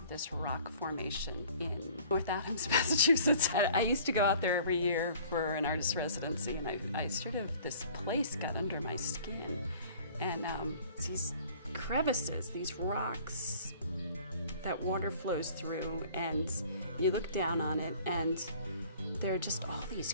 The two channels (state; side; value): inverted; both; correlation -0.50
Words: this rock formation in North Adams, Massachusetts. I used to go out there every year for an artist residency, and I sort of, this place got under my skin. And these crevices, these rocks that water flows through, and you look down on it and there are just all